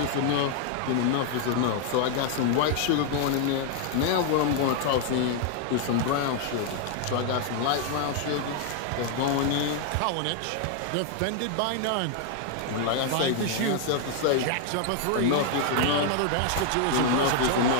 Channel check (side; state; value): both; different; correlation 0.00